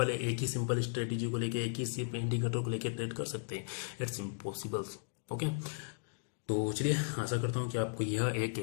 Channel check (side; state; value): right; silent; digital silence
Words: है, एक ही सिंपल स्ट्रेटेजी को लेके, एक ही सिर्फ इंडिकेटर को लेके ट्रेड कर सकते हैं? It's impossible. ओके, तो चलिए, आशा करता हूँ कि आपको यह एक